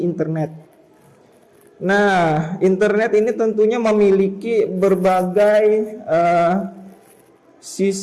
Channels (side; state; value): both; identical; correlation 1.00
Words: internet. Nah, internet ini tentunya memiliki berbagai